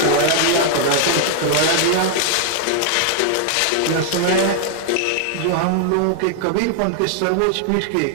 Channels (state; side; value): different; both; correlation 0.00